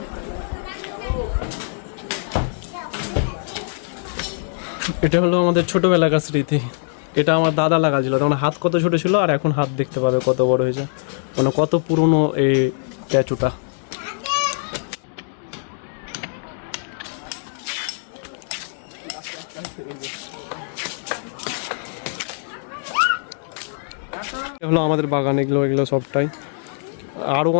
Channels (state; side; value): silent; right; 64 dB below the other